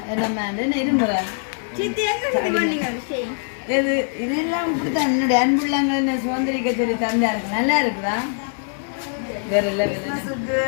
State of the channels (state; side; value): silent; right; digital silence